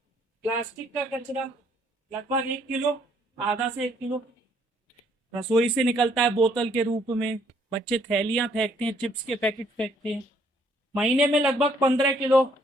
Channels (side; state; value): both; normal; correlation 0.66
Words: प्लास्टिक का कचरा लगभग 1 किलो, आधा से 1 किलो। रसोई से निकलता है बोतल के रूप में, बच्चे थैलियां फेंकते हैं, चिप्स के पैकेट फेंकते हैं। महीने में लगभग 15 किलो